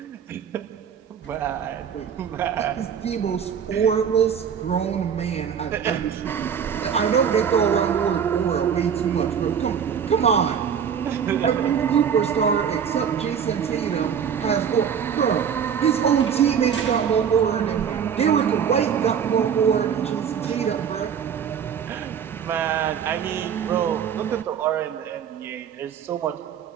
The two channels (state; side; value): quieter; left; 7.7 dB